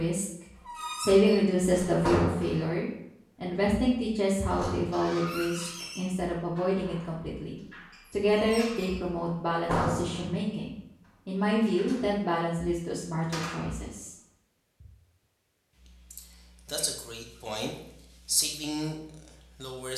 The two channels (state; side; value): identical; both; correlation 1.00